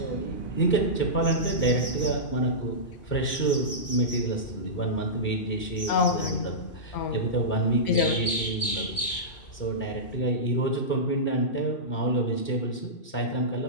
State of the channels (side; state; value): right; late; 2.5 ms